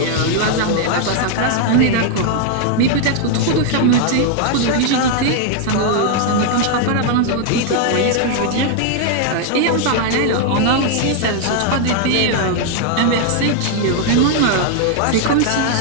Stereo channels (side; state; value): both; different; correlation 0.00